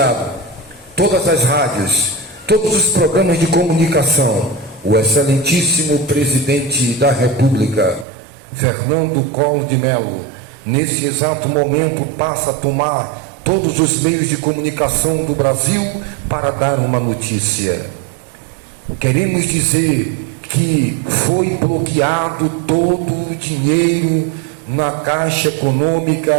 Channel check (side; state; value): left; drops out; at 8.1 s